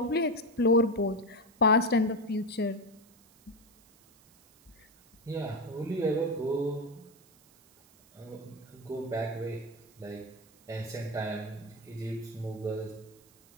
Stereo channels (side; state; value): right; noise; hiss, 28 dB below the sound